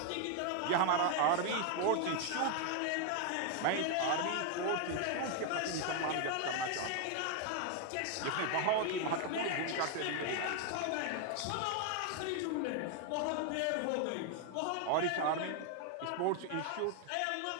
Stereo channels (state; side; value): different; both; correlation 0.01